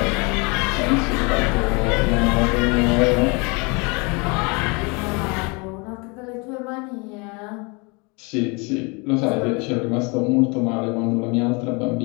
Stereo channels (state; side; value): quieter; right; 29.9 dB